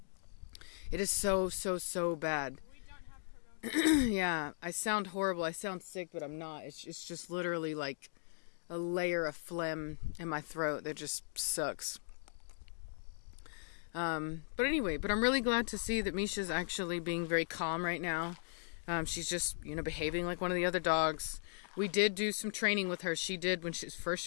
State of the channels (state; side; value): silent; right; digital silence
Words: It is so bad. We don't have corona. Yeah, I sound horrible. I sound sick, but I'm not. It's just literally like a layer of phlegm in my throat that just sucks. But anyway, I'm really glad to see that Misha's actually being very calm right now. She's just, you know, behaving like one of the other dogs. We did do some training with her. She did when